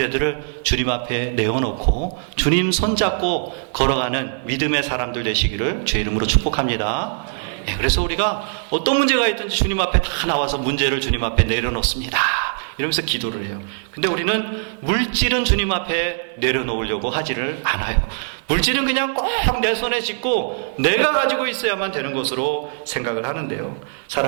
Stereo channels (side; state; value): left; silent; digital silence